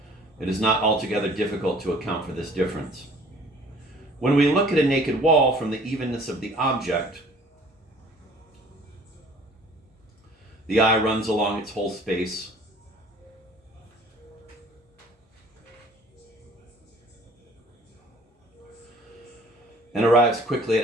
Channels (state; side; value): normal; both; correlation 0.52